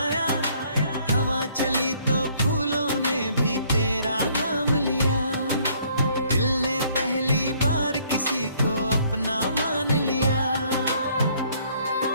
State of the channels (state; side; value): inverted; both; correlation -0.63